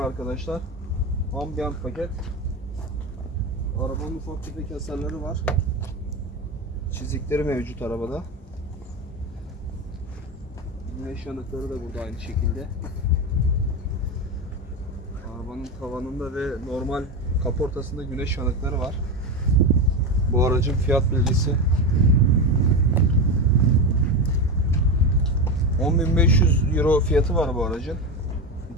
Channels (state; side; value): normal; both; correlation 0.18